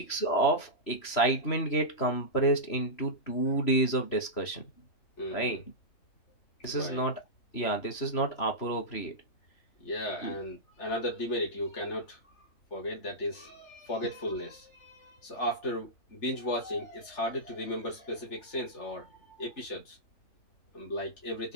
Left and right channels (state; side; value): late; right; 3.1 ms